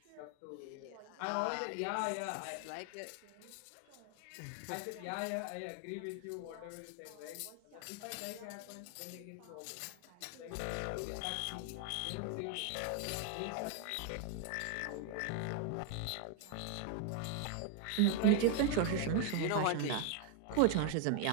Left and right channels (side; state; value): both; different; correlation 0.01